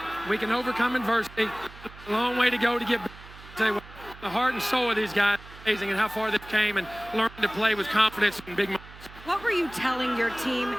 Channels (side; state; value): right; noise; hum, 18 dB below the sound